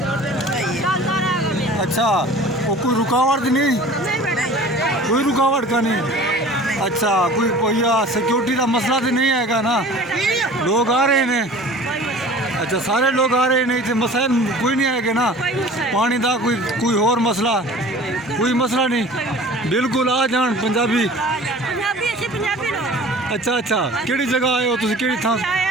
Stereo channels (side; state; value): both; normal; correlation 0.43